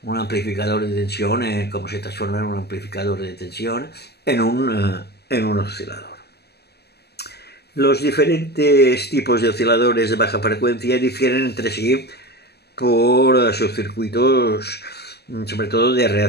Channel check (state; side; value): late; right; 0.47 ms